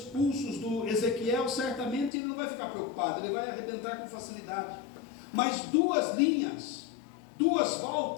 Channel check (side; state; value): right; drops out; at 2.1 s